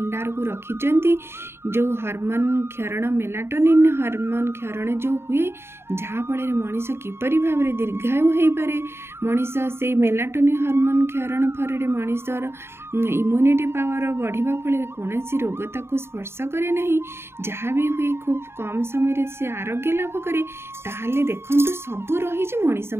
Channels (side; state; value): left; late; 0.12 ms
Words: को रखिचंती जो हार्मोन क्षरण मेलाटोनिन हार्मोन क्षरण जो हुए जहाँफल मनीष किपरि भावरे दीर्घायु हो पारे मनीष से मेलाटोनिन हार्मोन क्षरण फल मनीषर इम्यूनिटी पावर बढ़िबा फल कौन रोग ताकू स्पर्श करे नहीं जहाँ भी हुए खूब कम समय से आरोग्य लाभ करे ताहले देखंतु सबू रही मनीष